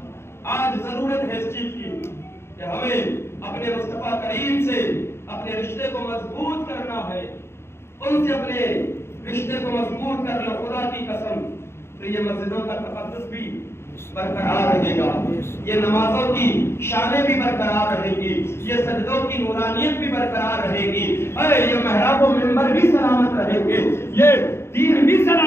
آج ضرورت ہے اس چیز کی کہ ہمیں اپنے مصطفیٰ کریم سے اپنے رشتے کو مضبوط کرنا ہے. ان سے اپنے رشتے کو مضبوط کر لو. خدا کی قسم تو یہ مسجدوں کا تقدس بھی برقرار رہے گا, یہ نمازوں کی شانیں بھی برقرار رہے گی, یہ سجدوں کی نورانیت بھی برقرار رہے گی, یہ محراب و منبر بھی سلامت رہیں گے, یہ دین بھی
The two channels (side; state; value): right; late; 0.12 ms